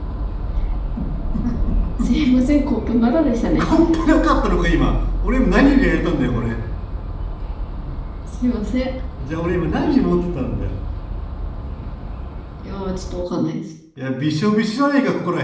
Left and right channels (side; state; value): both; identical; correlation 1.00